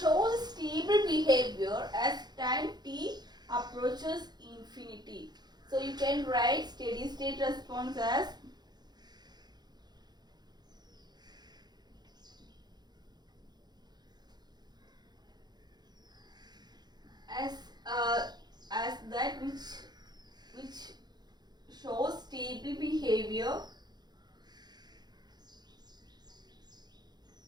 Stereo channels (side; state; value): left; late; 0.20 ms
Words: stable behavior as time t approaches infinity. So you can write steady state response as that which shows stable behavior